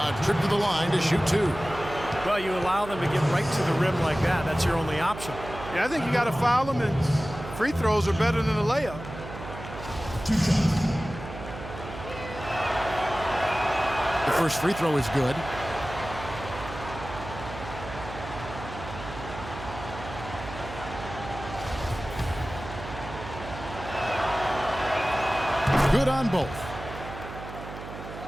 trip to the line to shoot 2. Well, you allow them to get right to the rim like that. That's your only option. Yeah, I think you got to foul them, and free throws are better than a layup. The first free throw is good. Good on both.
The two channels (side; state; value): right; noise; hum, 12 dB below the sound